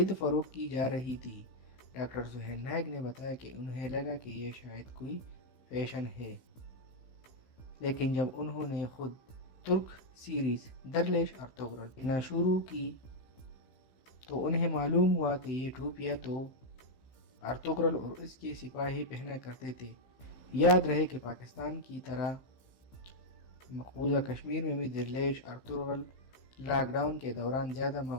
فروخت کی جا رہی تھی۔ ڈاکٹر سہیل نائک نے بتایا کہ انہیں لگا کہ یہ شاید کوئی فیشن ہے، لیکن جب انہوں نے خود ترک سیریز درلیش ارطغرل دیکھنا شروع کی تو انہیں معلوم ہوا کہ یہ ٹوپیاں تو ارطغرل اور اس کے سپاہی پہنا کرتے تھے۔ یاد رہے کہ پاکستان کی طرح مقبوضہ کشمیر میں بھی درلیش ارطغرل لاک ڈاؤن کے دوران زیادہ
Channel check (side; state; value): right; late; 15 ms